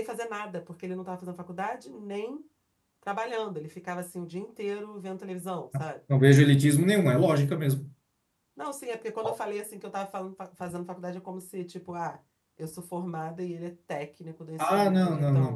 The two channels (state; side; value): identical; both; correlation 1.00